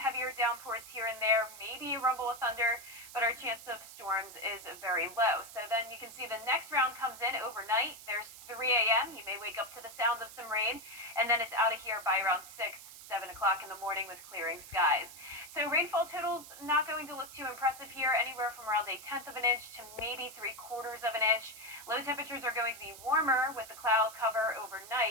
downpours here and there, maybe a rumble of thunder, but our chance of storms is very low. So then you can see the next round comes in overnight. There's 3 a.m. You may wake up to the sound of some rain, and then it's out of here by around 6, 7 o'clock in the morning with clearing skies. So rainfall totals not going to look too impressive here, anywhere from around 1/10 of an inch to maybe 3/4 of an inch. Low temperatures are going to be warmer with the cloud cover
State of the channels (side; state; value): right; noise; hiss, 15 dB below the sound